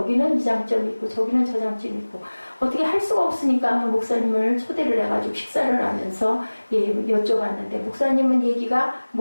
이 장점이 있고 저기는 저 장점이 있고 어떻게 할 수가 없으니까 목사님을 초대를 해가지고 식사를 하면서 여쭤봤는데 목사님은 얘기가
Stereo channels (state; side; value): inverted; both; correlation -1.00